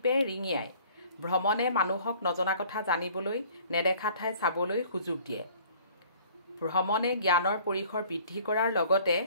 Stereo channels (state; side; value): inverted; both; correlation -0.53